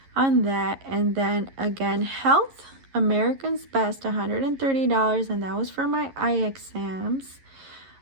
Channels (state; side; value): late; left; 11 ms